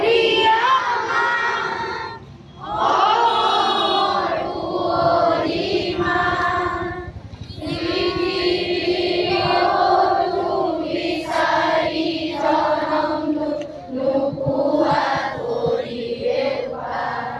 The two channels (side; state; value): both; identical; correlation 1.00